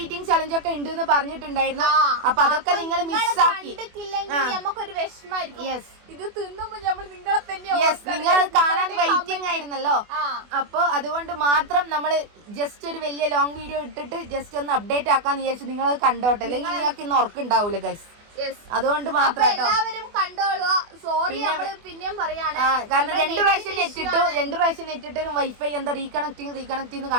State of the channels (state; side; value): late; left; 24 ms